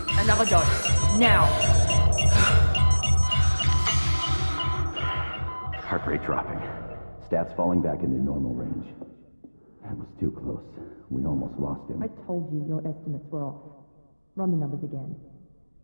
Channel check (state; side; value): inverted; both; correlation -1.00